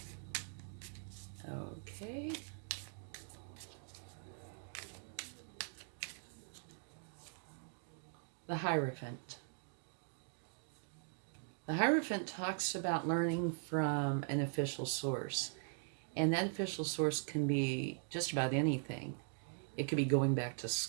Okay. The Hierophant. The Hierophant talks about learning from an official source. And that official source can be just about anything. It could be going back to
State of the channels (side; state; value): left; silent; digital silence